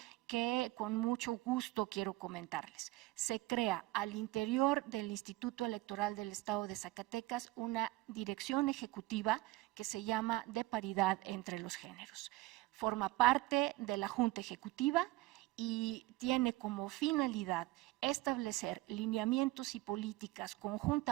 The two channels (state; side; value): quieter; left; 19.5 dB